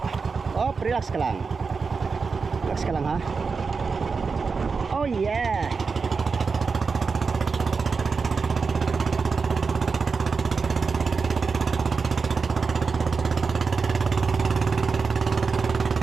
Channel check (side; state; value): left; quieter; 4.9 dB